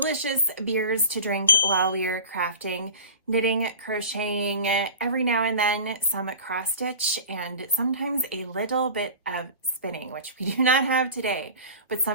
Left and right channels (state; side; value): inverted; both; correlation -0.38